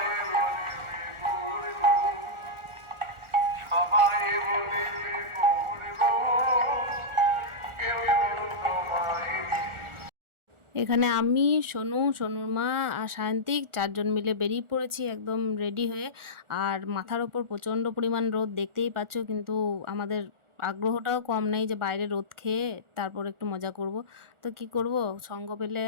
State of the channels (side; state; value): left; late; 1.4 ms